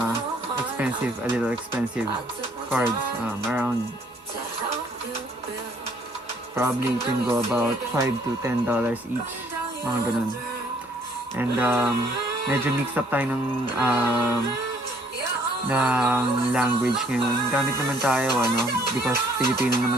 expensive, a little expensive cards. Around probably it can go about $5 to $10 each, mga ganun. And medyo mix up tayo ng language ngayon. Gamit naman tayo, because Filipino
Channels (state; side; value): normal; both; correlation 0.63